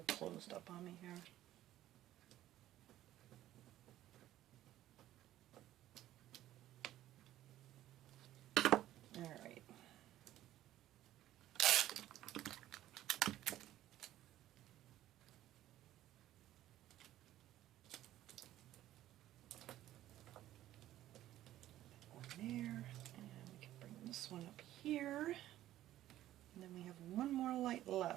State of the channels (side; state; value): left; quieter; 13.7 dB